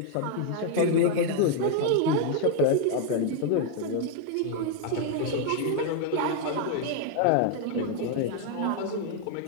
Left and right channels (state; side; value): different; both; correlation 0.00